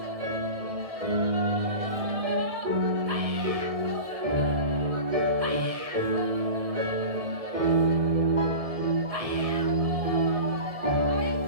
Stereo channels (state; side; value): late; left; 1.6 ms